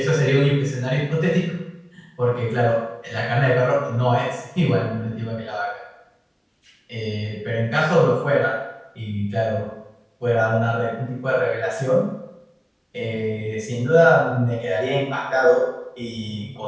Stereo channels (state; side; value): identical; both; correlation 1.00